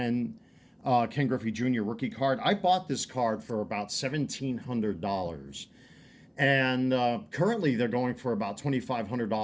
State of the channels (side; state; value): both; identical; correlation 1.00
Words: Ken Griffey Jr. rookie card. I bought this card for about $1,700. And currently they're going for about